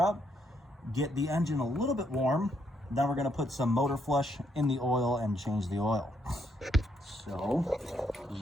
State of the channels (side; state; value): both; normal; correlation 0.74